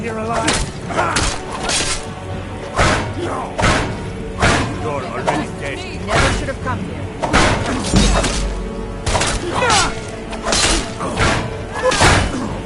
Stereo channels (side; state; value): both; identical; correlation 1.00